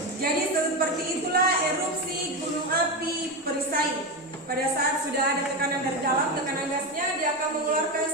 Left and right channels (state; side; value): normal; both; correlation 0.15